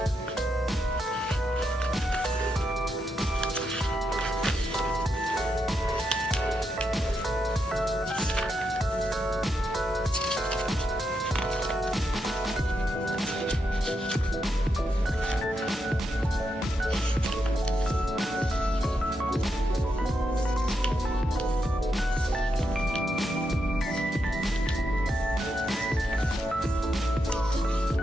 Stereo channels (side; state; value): both; normal; correlation 0.83